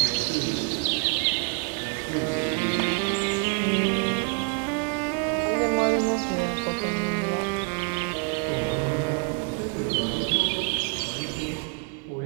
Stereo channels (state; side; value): quieter; left; 35.9 dB